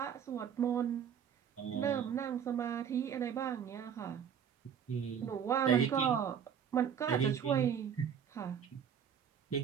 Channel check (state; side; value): quieter; left; 8.0 dB